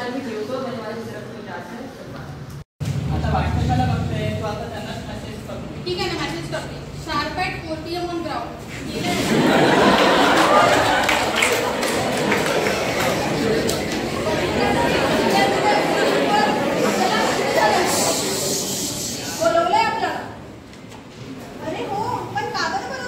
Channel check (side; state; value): both; identical; correlation 1.00